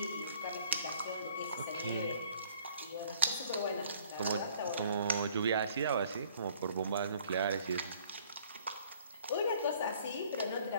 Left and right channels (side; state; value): both; inverted; correlation -0.57